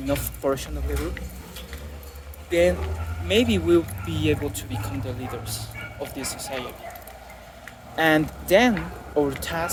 enough portion of the group, then maybe we'll be able to become the leaders of this society. And then our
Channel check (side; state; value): both; identical; correlation 1.00